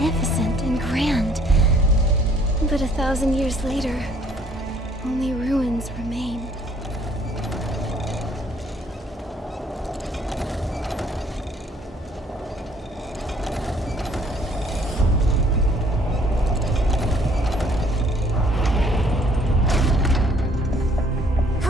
and grand. But 1,000 years later, only ruins remain.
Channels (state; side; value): normal; both; correlation 0.61